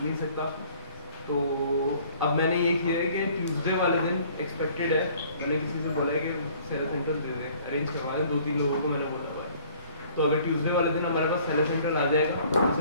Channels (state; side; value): inverted; both; correlation -0.55